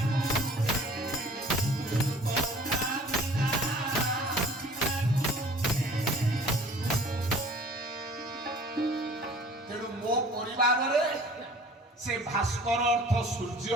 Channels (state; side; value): normal; both; correlation 0.48